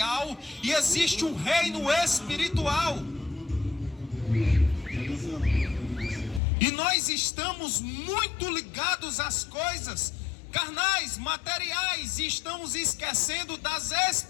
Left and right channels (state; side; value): drops out; right; at 6.4 s